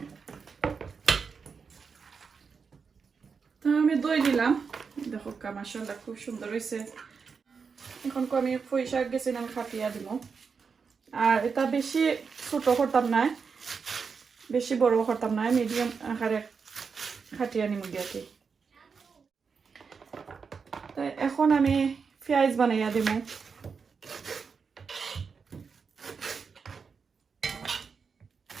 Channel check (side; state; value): left; quieter; 5.6 dB